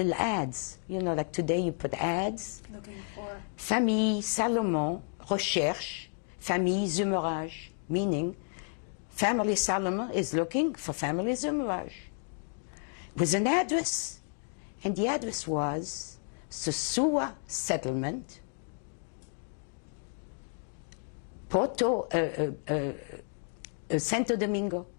ads. You know, like today you put ads. Looking for? Famille Salomon recherche famille Zumerage, meaning family Salomon is looking for family Zumerage. With an address. And the address was Sosua Settlement, Santo Domingo.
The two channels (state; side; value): silent; right; 57 dB below the other